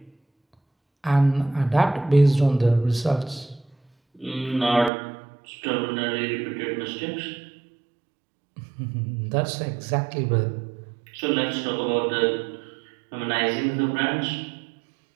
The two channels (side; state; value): left; drops out; at 4.9 s